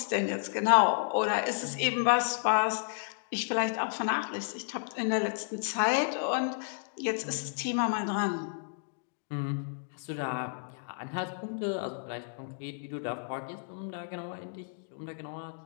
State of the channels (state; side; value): silent; right; digital silence